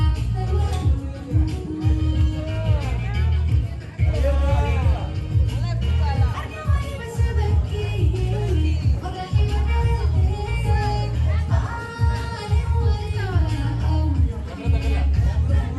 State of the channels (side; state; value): both; identical; correlation 1.00